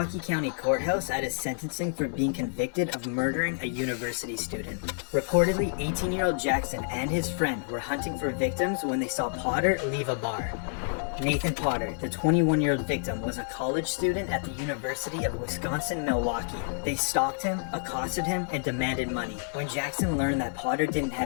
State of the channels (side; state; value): right; silent; 59 dB below the other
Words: County Courthouse at his sentencing for being convicted of murdering a university student. Reportedly, 18-year-old Jackson and his friend were hunting for victims when they saw Potter leave a bar. Nathan Potter, the 21-year-old victim, was a college student at the University of Wisconsin-Milwaukee. They stalked him, accosted him, and demanded money. When Jackson learned that Potter didn't